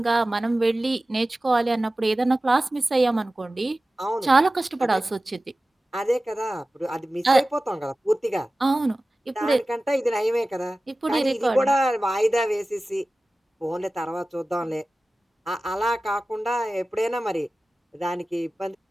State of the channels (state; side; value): normal; both; correlation 0.96